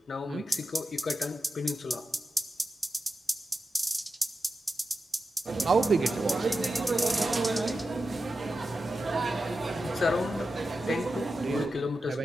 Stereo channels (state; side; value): normal; both; correlation 0.91